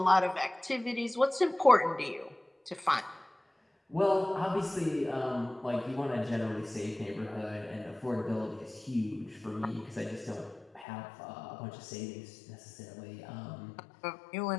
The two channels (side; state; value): right; drops out; at 10.9 s